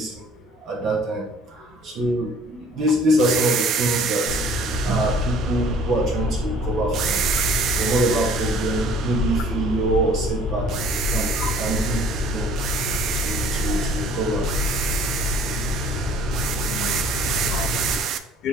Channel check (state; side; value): normal; both; correlation 0.53